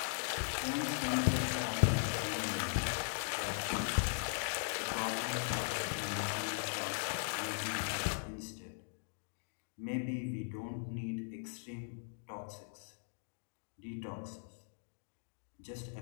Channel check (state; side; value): silent; right; digital silence